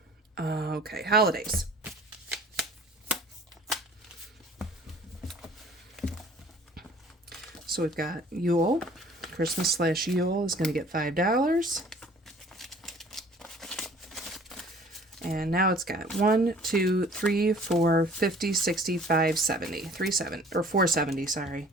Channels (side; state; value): both; normal; correlation 0.51